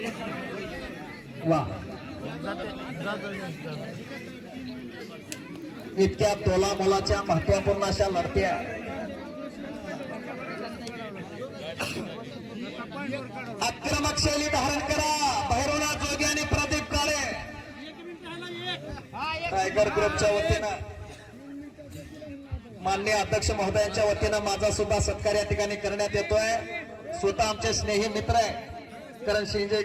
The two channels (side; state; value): both; identical; correlation 1.00